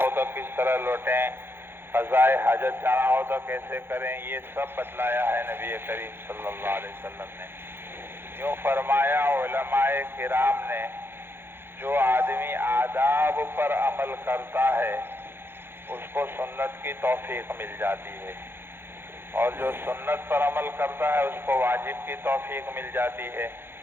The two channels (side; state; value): left; late; 0.11 ms